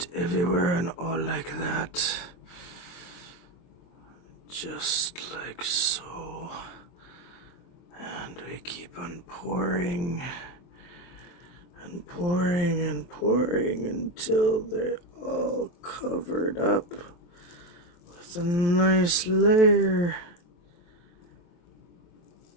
everywhere and all like that. Just like so. And we keep on pouring and pouring and pouring until they're all covered up with a nice layer.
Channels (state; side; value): late; right; 23 ms